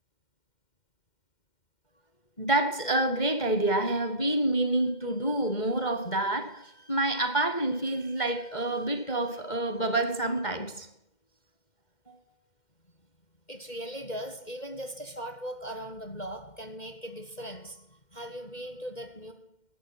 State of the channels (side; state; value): right; late; 2.1 ms